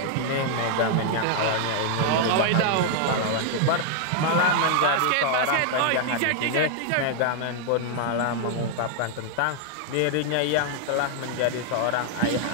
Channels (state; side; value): different; both; correlation -0.01